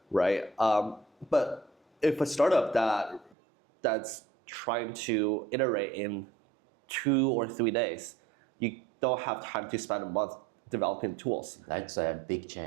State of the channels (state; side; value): drops out; left; at 3.4 s